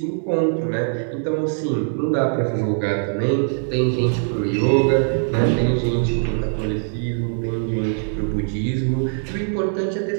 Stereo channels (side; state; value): left; silent; digital silence